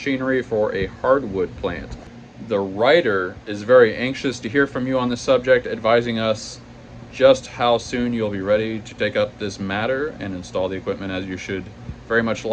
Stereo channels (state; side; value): identical; both; correlation 1.00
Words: for a hardwood plant. The writer is very anxious to hear from you on this subject, advising us just how soon you'll be ready to take up this matter and install the equipment, as you should very much